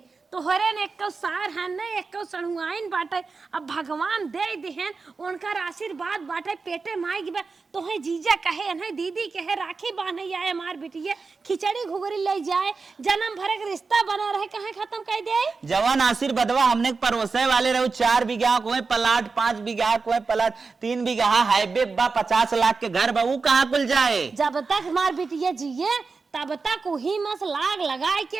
तोहरे ने एक सार है न एक सणुआइन बाटे अब भगवान दे दिहन उनकर आशीर्वाद बाटे पेटे माई की बात तोहे जीजा कहे अनहे दीदी कहे राखी बांधे आए हमार बिटिया खिचड़ी घुगरी ले जाए जन्म भर के रिश्ता बना रहे कहे खत्म कर दे। जवान आशीर्वादवा हमने परोसे वाले रहो 4 बीघा को प्लाट 5 बीघा को प्लाट 3 बीघा हाईवे बा 50 लाख के घर बा वो कहाँ कुल जाए। जब तक हमार बिटिया जिए तब तक वही मस लाग लगाए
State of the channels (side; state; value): left; quieter; 4.4 dB